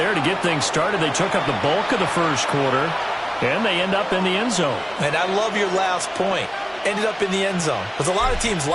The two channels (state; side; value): identical; both; correlation 1.00